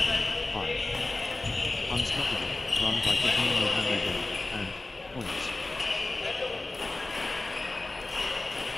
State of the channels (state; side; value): quieter; right; 3.0 dB